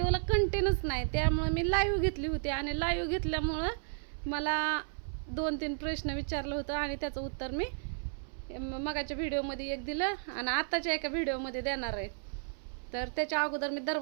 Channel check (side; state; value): left; silent; 56 dB below the other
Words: कंटेनच नाही, त्यामुळं मी लाईव्ह घेतली होती, आणि लाईव्ह घेतल्यामुळं मला 2-3 प्रश्न विचारलं होतं, आणि त्याचं उत्तर मी मगाच्या व्हिडिओमध्ये एक दिलं आणि आताच्या एका व्हिडिओमध्ये देणार आहे. तर त्याच्या अगोदर मी